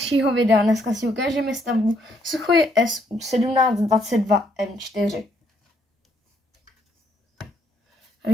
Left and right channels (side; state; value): both; normal; correlation 0.71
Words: videa. Dneska si ukážeme stavbu Suchoj Su-1722M4.